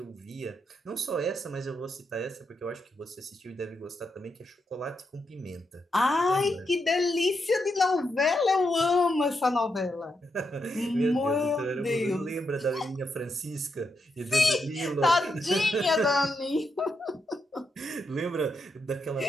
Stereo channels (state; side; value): normal; both; correlation 0.82